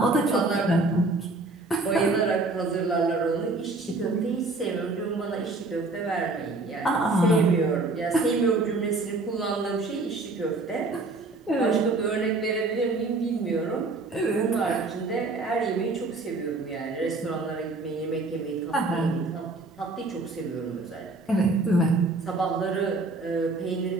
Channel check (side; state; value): left; quieter; 3.3 dB